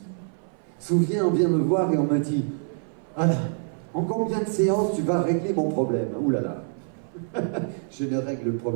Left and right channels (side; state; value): left; silent; 57 dB below the other